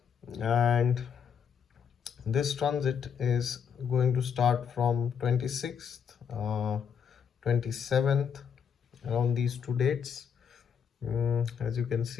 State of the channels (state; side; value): quieter; right; 7.3 dB